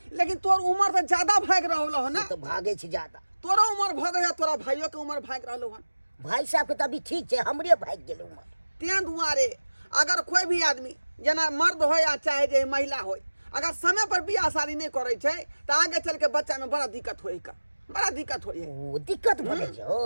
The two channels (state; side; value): inverted; both; correlation -1.00